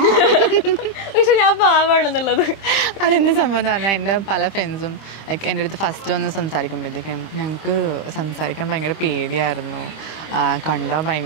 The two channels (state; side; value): late; right; 25 ms